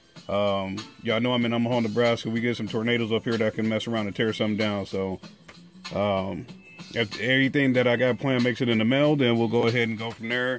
Y'all know I'm in Omaha, Nebraska. We get some tornadoes up here that can mess around and tear something down. So if everything that I got planned makes it in the mail, then we'll go ahead and go from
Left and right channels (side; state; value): both; identical; correlation 1.00